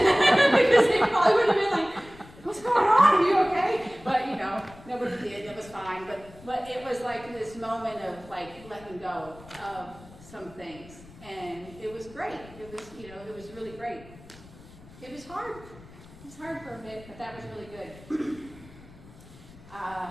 they probably would have been like, "What's going on? Are you okay?" But you know, nobody did. It was fine. But it was like this moment of like letting go of some things, and it was great. It was, you know, it was really great. It was hard. It was hard for a bit, but that was really good.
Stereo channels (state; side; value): noise; left; rumble, 20 dB below the sound